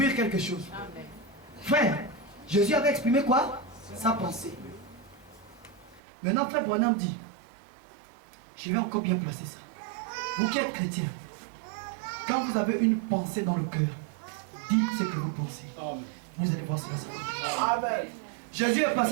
quelque chose. Amen. Frère, Jésus avait exprimé quoi? Sa pensée. Maintenant, frère Branham dit, je vais encore bien placer ça. Vous qui êtes chrétien, quand vous avez une pensée dans le cœur, dites ce que vous pensez. Amen. Vous allez voir cela. Amen. Jésus est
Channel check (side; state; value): left; drops out; at 6.0 s